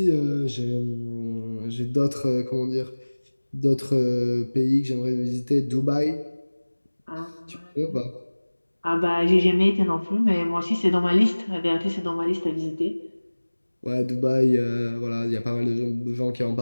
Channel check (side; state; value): both; inverted; correlation -1.00